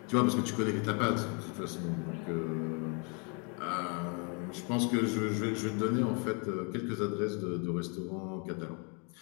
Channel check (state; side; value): quieter; right; 35.9 dB